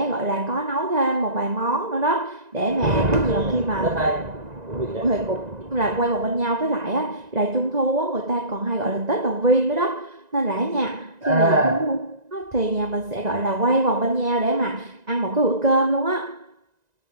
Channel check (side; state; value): left; late; 1.9 ms